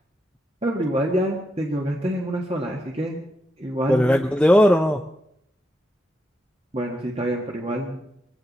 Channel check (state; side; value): normal; both; correlation 0.84